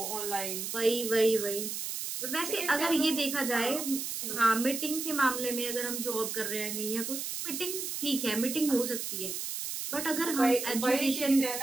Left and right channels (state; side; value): noise; right; hiss, 4 dB below the sound